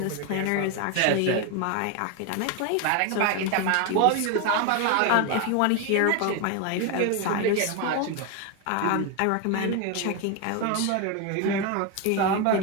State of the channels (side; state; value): both; different; correlation 0.02